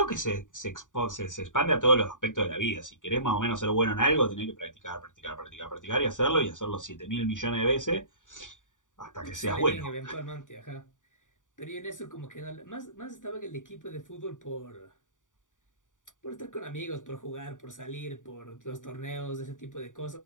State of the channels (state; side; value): late; right; 0.87 ms